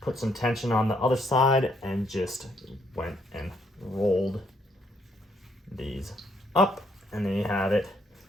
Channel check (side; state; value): both; normal; correlation 0.71